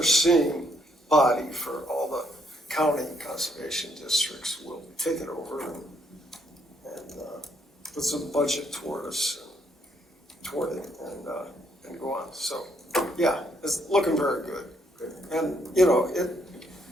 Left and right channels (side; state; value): both; normal; correlation 0.71